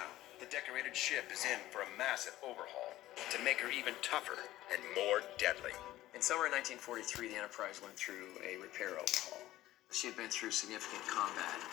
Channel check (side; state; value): right; quieter; 15.4 dB